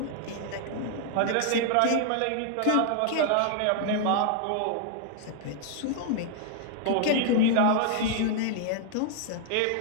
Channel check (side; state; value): both; different; correlation -0.01